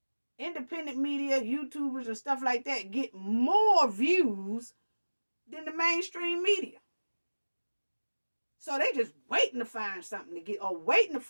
independent media, YouTubers and stuff like that get more views than the mainstream media. So they just waiting to find something to get, or waiting to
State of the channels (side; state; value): both; inverted; correlation -1.00